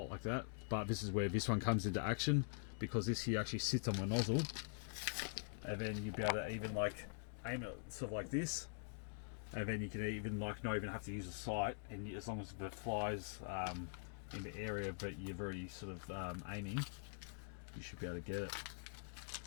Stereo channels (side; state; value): right; silent; digital silence